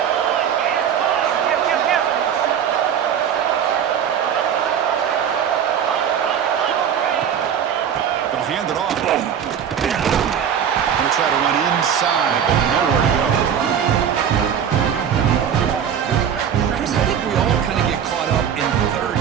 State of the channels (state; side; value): quieter; left; 8.4 dB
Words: Hand it off. Going to try to run inside, but nowhere to go. Chris, I think we all kind of get caught up in 3rd